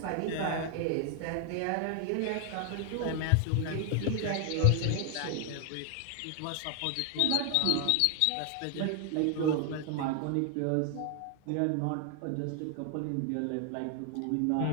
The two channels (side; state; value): both; different; correlation 0.00